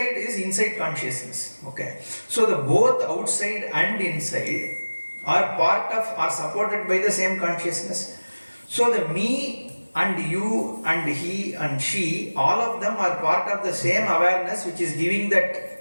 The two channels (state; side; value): inverted; both; correlation -1.00